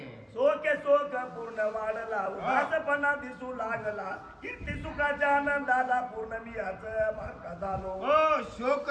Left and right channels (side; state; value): both; identical; correlation 1.00